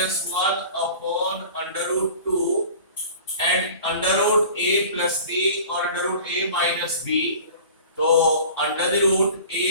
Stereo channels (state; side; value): inverted; both; correlation -0.42